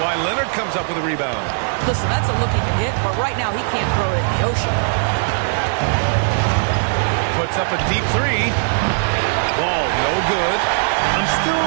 Leonard comes up with a rebound. Listen, that's a look he can hit, but right now he can't throw it in the ocean. Puts up a deep 3. Wall, no good. I'm still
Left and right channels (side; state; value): left; silent; 67 dB below the other